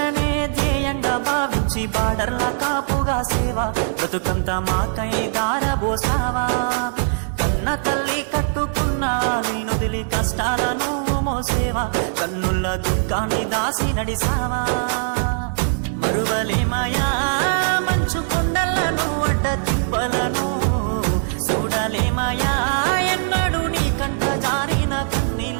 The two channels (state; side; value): silent; left; 61 dB below the other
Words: ధ్యేయంగా భావించి బార్డర్ల కాపుగా సేవ బ్రతుకంత మాకై దారబోసావా. కన్న తల్లి కట్టుకున్న నొదిలి కష్టాల నువ్వు మోసేవా, కన్నుల దుఃఖాన్ని దాసి నడిసావా. మరువలేమయా మంచు కొండలను అడ్డ తిప్పలను, చూడలేమయా ఎన్నడు నీ కంట జారిన